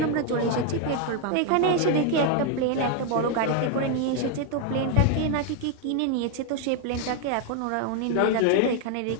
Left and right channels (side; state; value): both; different; correlation 0.01